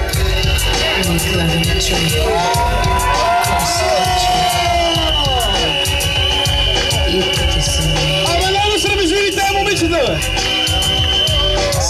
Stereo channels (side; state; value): both; identical; correlation 1.00